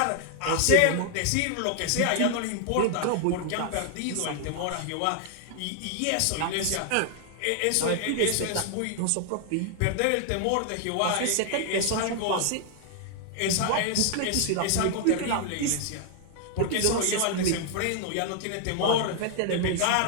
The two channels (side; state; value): both; different; correlation 0.00